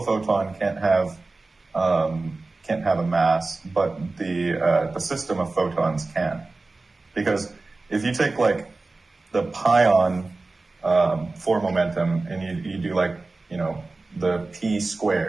photon can't have a mass, but the system of photons can. Because if you take the pion four momentum and you do the p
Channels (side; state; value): left; quieter; 3.4 dB